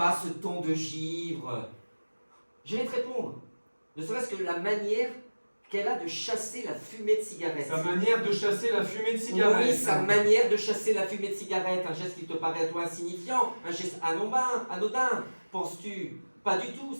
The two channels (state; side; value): inverted; both; correlation -1.00